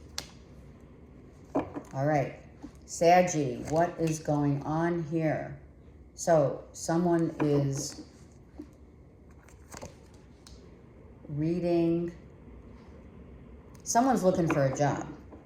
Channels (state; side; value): identical; both; correlation 1.00